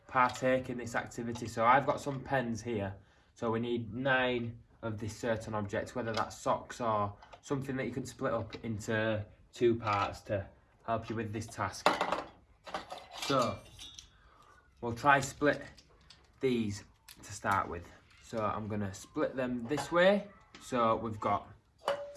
partake in this activity. So I've got some pens here, so we need 9 of this certain object, whether that's socks or something that you can split up into 2 parts to help you with this task. So we'll try split these to start with. So I'm going to split them this way. So we've got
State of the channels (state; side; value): identical; both; correlation 1.00